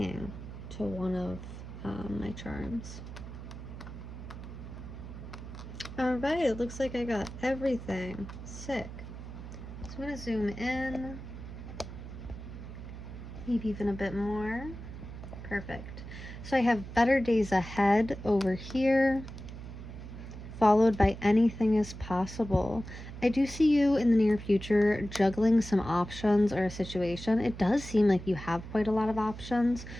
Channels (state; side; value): noise; right; hum, 11 dB below the sound